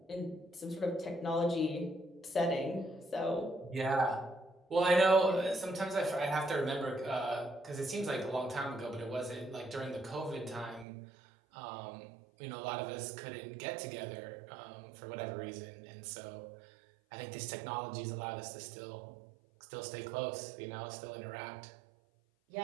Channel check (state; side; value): drops out; left; at 10.9 s